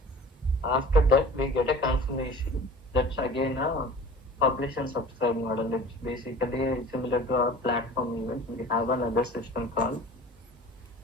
after that we get a confirmation. That's again a publish and subscribe model. It's basically similar to our platform event. We have another system called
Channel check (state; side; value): normal; both; correlation 0.42